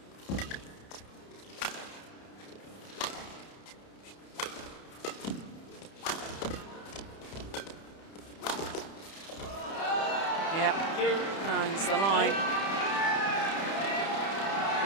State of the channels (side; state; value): right; late; 31 ms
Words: Yeah, finds the line. Of